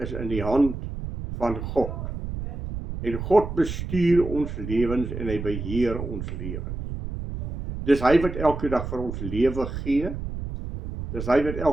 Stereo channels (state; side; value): noise; right; rumble, 7 dB below the sound